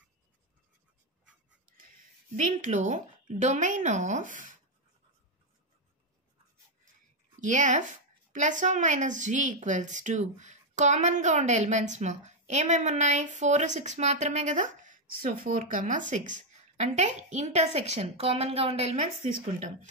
దీంట్లో domain of f ± g equals to కామన్గా ఉండే ఎలిమెంట్స్ మా ఏమేమి ఉన్నాయి? 4, 6 మాత్రమే కదా. సో 4, 6 అంటే ఇంటర్సెక్షన్, కామన్గా ఉండే ఎలిమెంట్స్ తీసుకుంటాం.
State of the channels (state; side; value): normal; both; correlation 0.02